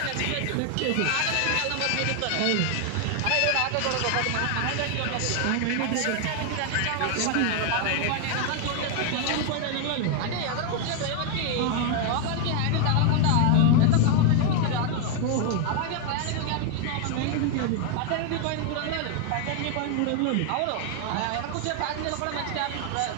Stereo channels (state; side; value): different; both; correlation 0.00